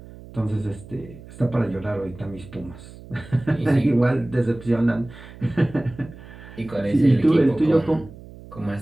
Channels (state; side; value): noise; right; hum, 18 dB below the sound